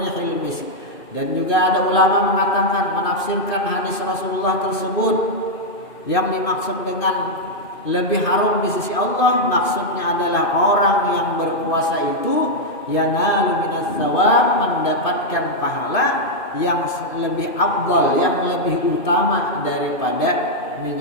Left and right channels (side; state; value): right; late; 2.5 ms